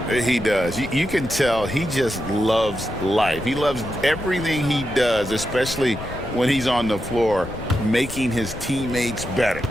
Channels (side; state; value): left; noise; rumble, 12 dB below the sound